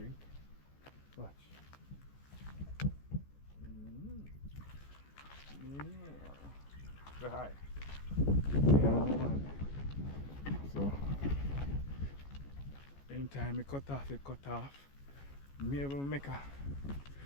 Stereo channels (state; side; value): late; right; 14 ms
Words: Watch. Say hi. Yeah man. So anytime I cut off, it cut off. Maybe make a